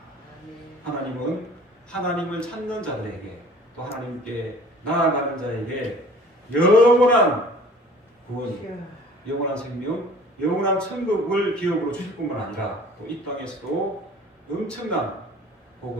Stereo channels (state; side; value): normal; both; correlation 0.48